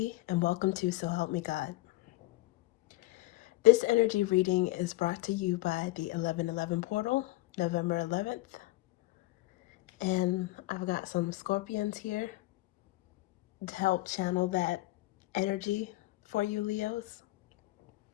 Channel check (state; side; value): quieter; right; 19.6 dB